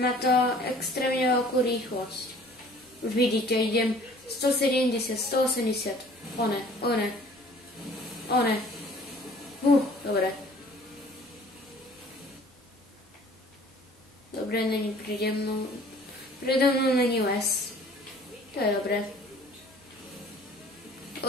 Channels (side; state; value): both; normal; correlation 0.52